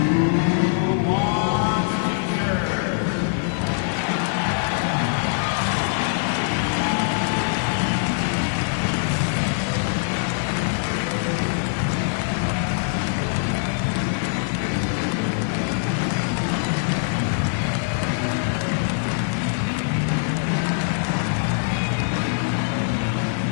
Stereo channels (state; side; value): silent; right; 63 dB below the other